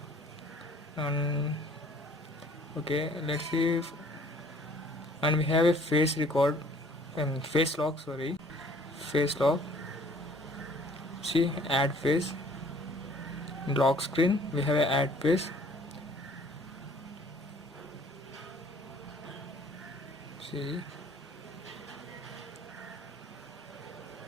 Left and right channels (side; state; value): both; normal; correlation 0.56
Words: and okay, let's see and we have a face record and face lock, face lock. See, add face, lock screen, we have a add face. See,